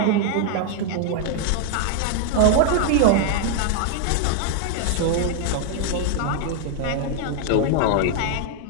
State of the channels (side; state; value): both; different; correlation 0.00